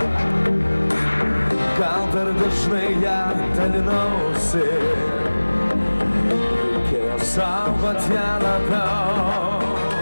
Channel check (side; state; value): both; inverted; correlation -1.00